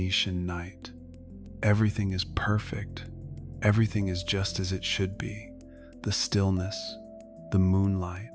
night. Everything is perfect. Everything is just as it should be. The stillness, the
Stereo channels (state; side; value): identical; both; correlation 1.00